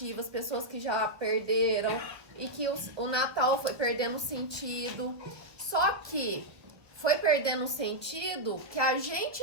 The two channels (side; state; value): left; late; 1.0 ms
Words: pessoas que já perderam e que o Natal foi perdendo sentido. Só que foi perdendo o sentido que a